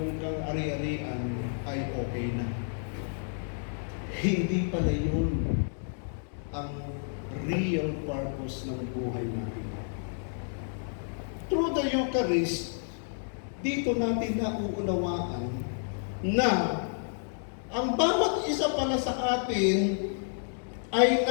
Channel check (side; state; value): right; silent; digital silence